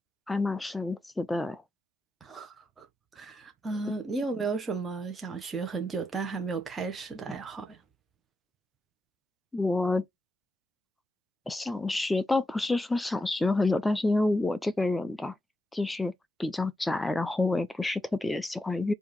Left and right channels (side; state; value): both; normal; correlation 0.87